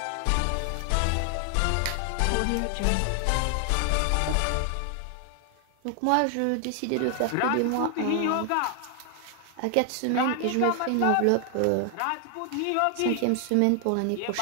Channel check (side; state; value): both; different; correlation 0.00